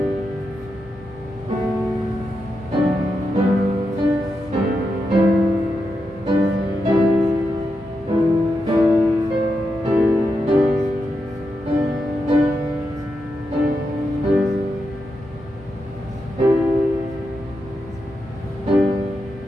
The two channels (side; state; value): both; normal; correlation 0.86